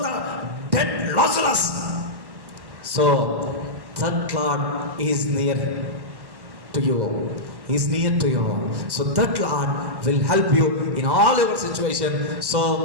dead Lazarus. So that Lord is near to you. Is near to you. So that Lord will help you in all your situation.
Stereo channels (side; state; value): left; late; 1.1 ms